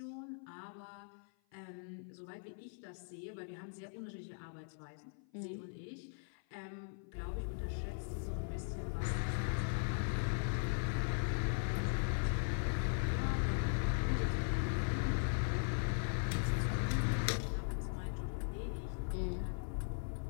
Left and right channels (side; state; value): right; silent; 51 dB below the other